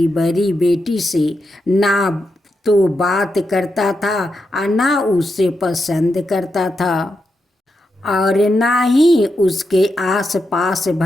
बड़ी बेटी से ना तो बात करता था और ना उससे पसंद करता था और ना ही उसके आसपास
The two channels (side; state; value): both; normal; correlation 0.85